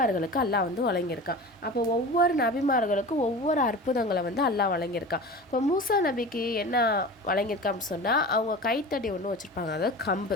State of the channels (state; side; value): normal; both; correlation 0.34